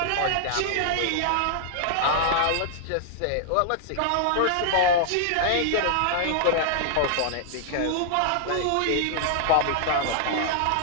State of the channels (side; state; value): both; different; correlation -0.01